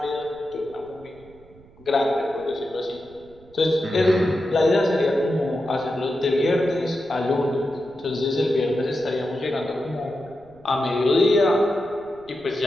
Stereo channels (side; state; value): right; noise; rumble, 25 dB below the sound